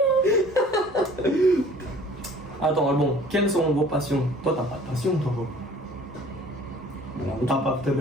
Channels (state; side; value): normal; both; correlation 0.50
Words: Attends, bon, quelles sont vos passions? Toi, t'as pas de passion, toi, gros. T'as pas